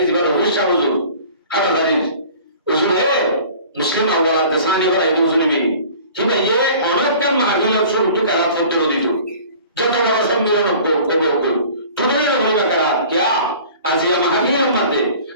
জিবা রহুসা বুঝু হাটা দাদিজ উজুলে মুসলিম আওয়াজ দেশানি হয় এদিকে উজুলিবি কিন্তু এ অনেকটা মাহফিলের শুরুতে কারাত করতে দিছো যত বড় সম্মিলন করবে তুমি বলবে কারা কিয়া আজিয়া মাহফিলের মধ্যে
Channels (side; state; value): both; inverted; correlation -0.46